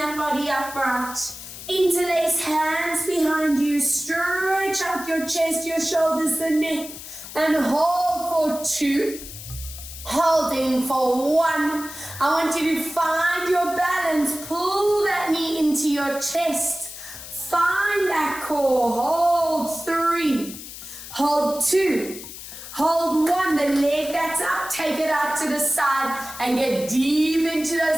body upright. Interlace hands behind you, stretch out your chest, your shoulders, the neck, and hold for 2, holding for 1. I want you to find your balance, pull that knee into your chest. Find that core, hold 3, hold 2, hold 1, the leg that's up, take it out to the side and get deep into those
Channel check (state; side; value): noise; left; hiss, 12 dB below the sound